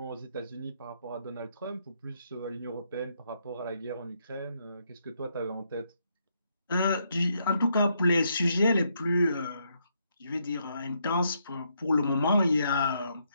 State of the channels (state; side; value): inverted; both; correlation -0.76